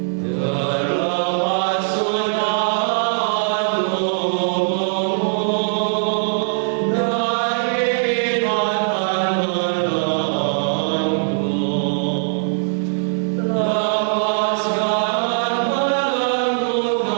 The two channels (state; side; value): silent; left; digital silence